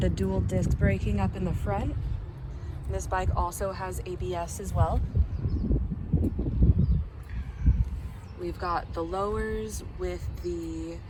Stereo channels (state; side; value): identical; both; correlation 1.00